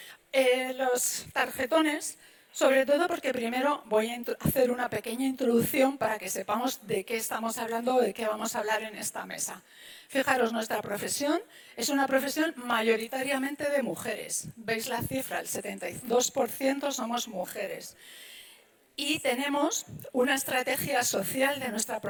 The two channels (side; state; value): both; identical; correlation 1.00